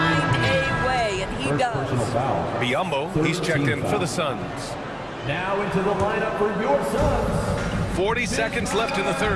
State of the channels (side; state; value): both; identical; correlation 1.00